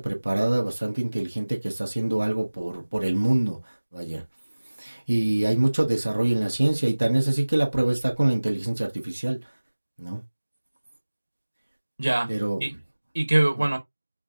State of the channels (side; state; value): both; inverted; correlation -1.00